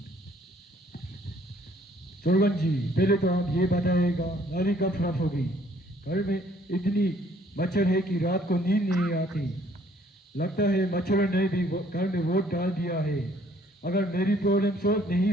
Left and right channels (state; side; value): normal; both; correlation 0.61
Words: सरपंच जी, पहले तो आप ये बताइएगा नाली कब साफ होगी? घर में इतनी मच्छर है कि रात को नींद नहीं आती। लगता है मच्छरों ने भी घर में वोट डाल दिया है। अगर मेरी प्रॉब्लम सॉल्व नहीं